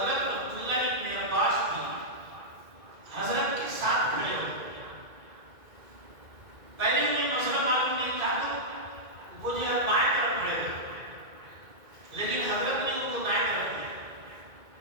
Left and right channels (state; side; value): late; left; 2.2 ms